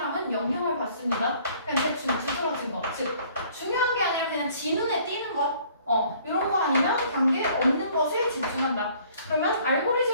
영향을 받습니다. 그냥 대충 두드러진 것, 즉 중요한 게 아니라 그냥 지 눈에 띄는 것, 이런 거 아니면 관계 없는 것에 집중한다. 그러면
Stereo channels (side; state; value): both; inverted; correlation -0.57